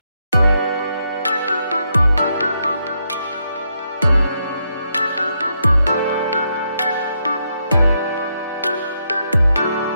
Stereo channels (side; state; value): both; inverted; correlation -0.79